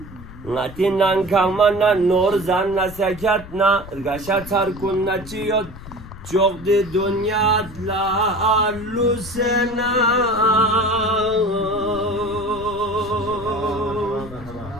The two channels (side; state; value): left; noise; rumble, 15 dB below the sound